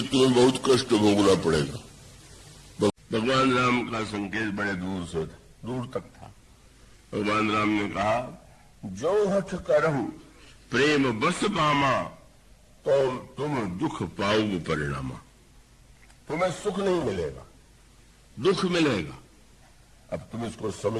तुम्हें बहुत कष्ट भोगना पड़ेगा। भगवान राम का संकेत बड़े दूर तक था। भगवान राम ने कहा, जो हठ करहु प्रेम बस पामा, तो तुम दुख पाओगे परिणामा। तुम्हें सुख नहीं मिलेगा, दुख मिलेगा। अब तुम इसको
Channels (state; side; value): identical; both; correlation 1.00